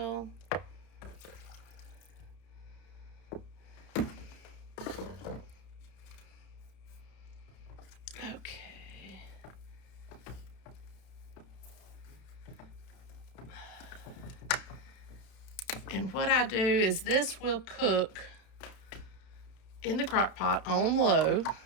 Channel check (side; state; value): right; late; 31 ms